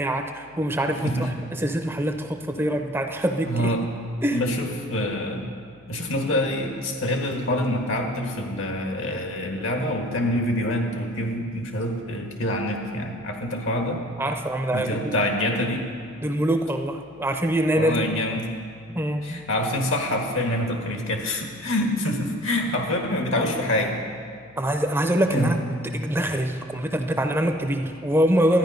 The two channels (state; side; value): noise; left; hum, 28 dB below the sound